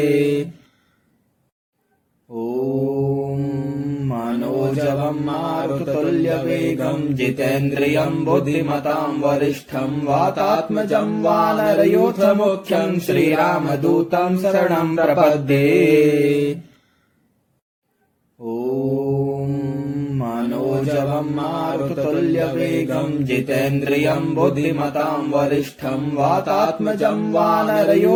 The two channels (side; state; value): both; identical; correlation 1.00